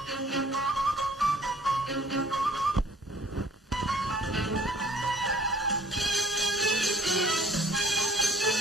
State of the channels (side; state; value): both; normal; correlation 0.55